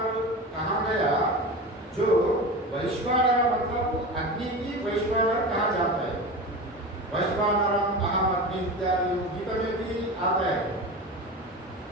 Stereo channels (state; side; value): normal; both; correlation 0.28